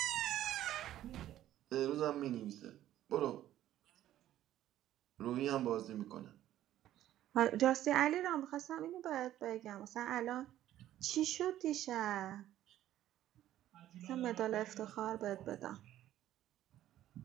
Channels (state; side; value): quieter; left; 12.9 dB